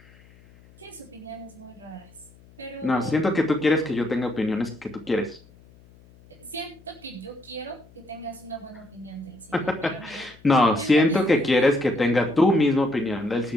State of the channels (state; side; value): noise; left; hum, 26 dB below the sound